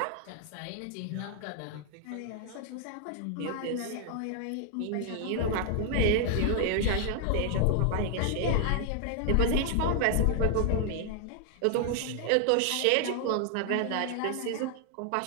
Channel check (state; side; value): different; both; correlation 0.00